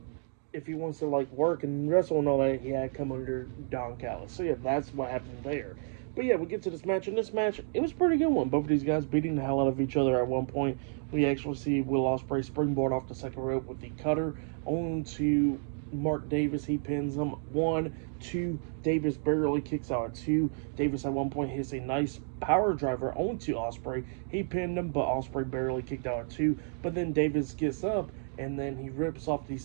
If he wants to like work and wrestle and all that, he had to come under Don Callis. So yeah, that's what happened there. But yeah, we get to this match, and this match, it was a pretty good one. Both of these guys beating the hell out of each other at one point. We actually see Will Ospreay springboard off the second rope with the cutter onto Mark Davis. He pins him. 1, 2. Davis barely kicks out at 2. Davis at one point hits a nice power driver onto Ospreay. He pinned him, but Ospreay barely kicked out at 2. But then Davis gets up, and then he rips off the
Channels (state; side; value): silent; left; 57 dB below the other